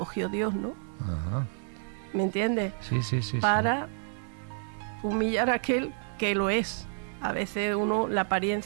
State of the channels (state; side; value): silent; left; 58 dB below the other